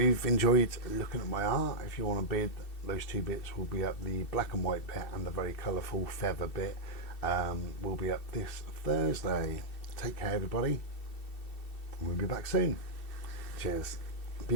enjoyed looking at my art. If you want to bid, those two bits will be up. The black and white bit and the very colourful feather bit will be up this Thursday. Take care, everybody. We'll be back soon. Cheers.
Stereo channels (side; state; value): right; late; 2.7 ms